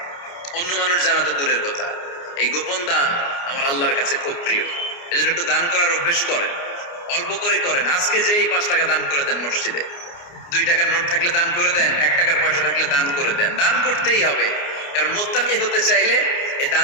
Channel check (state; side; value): late; right; 29 ms